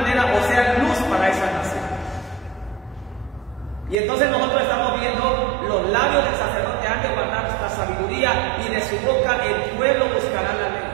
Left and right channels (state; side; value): drops out; left; at 4.0 s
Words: o sea, luz para esa nación. Y entonces nosotros estamos viendo: los labios del sacerdote han de guardar esta sabiduría, y de su boca el pueblo buscará la ley.